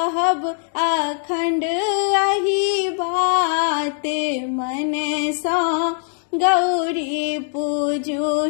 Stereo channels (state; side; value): silent; right; 56 dB below the other